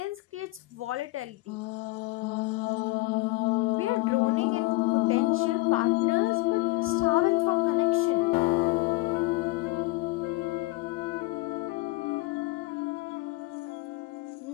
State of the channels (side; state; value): right; quieter; 21.8 dB